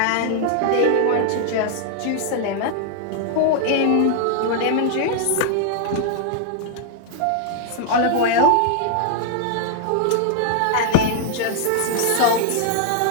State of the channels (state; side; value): different; both; correlation 0.00